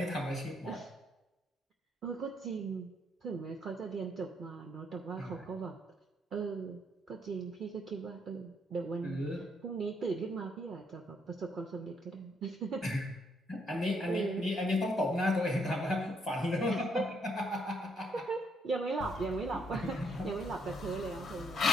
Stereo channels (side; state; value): both; normal; correlation 0.72